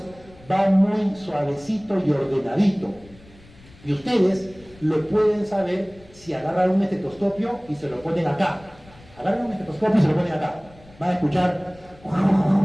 va muy suavecito y ordenadito. Y ustedes lo pueden saber si agarran un estetoscopio y se lo ponen acá. Agarran un estetoscopio y se lo ponen acá. Van a escuchar.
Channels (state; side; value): noise; left; rumble, 25 dB below the sound